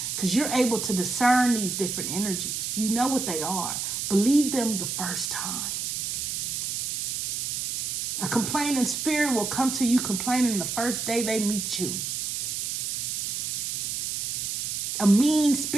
Because you're able to discern these different energies. You know what they are. Believe them the first time. A complaining spirit will come to you complaining the first day they meet you. A mean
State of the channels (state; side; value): noise; right; hiss, 2 dB below the sound